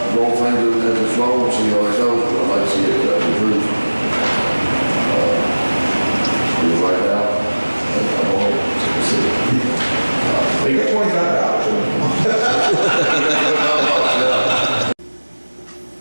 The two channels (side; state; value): both; inverted; correlation -1.00